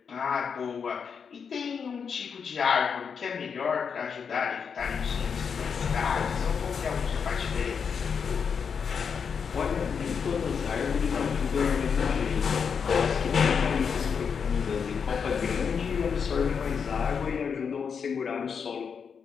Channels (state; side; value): quieter; right; 6.4 dB